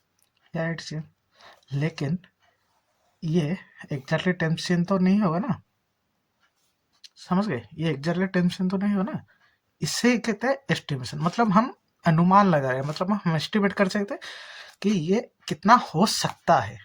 या 8 cm। लेकिन ये एग्जैक्टली 10 cm तो नहीं होगा ना, समझ गए। ये एग्जैक्टली 10 cm तो नहीं होगा ना। इससे कहते हैं एस्टिमेशन, मतलब हम अनुमान लगा रहे हैं, मतलब हम एस्टिमेट कर सकते हैं कि ये कितना हो सकता है,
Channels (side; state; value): both; identical; correlation 1.00